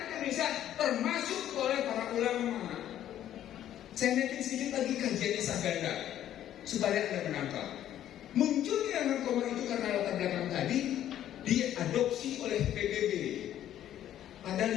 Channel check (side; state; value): right; quieter; 11.6 dB